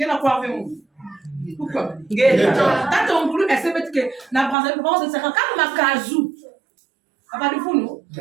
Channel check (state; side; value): drops out; left; at 4.5 s